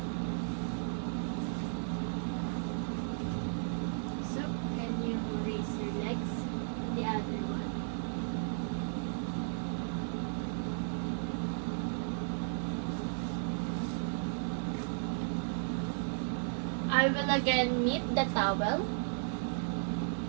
So can you raise your legs? The other one. I will again knit the towel.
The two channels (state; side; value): silent; left; digital silence